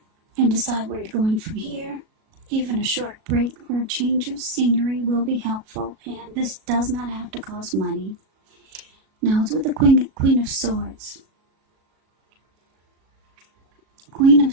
and decide where you're going from here. Even a short break or a change of scenery will be helpful, and this does not have to cost money. Now it's with the Queen of Swords. Queen of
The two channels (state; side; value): late; left; 37 ms